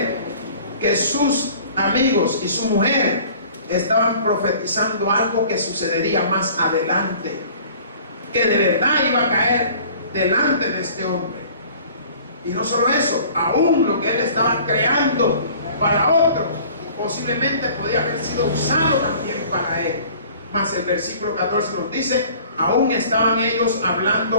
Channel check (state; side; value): inverted; both; correlation -0.49